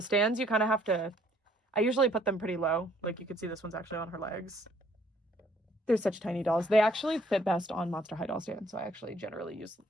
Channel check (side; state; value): both; normal; correlation 0.63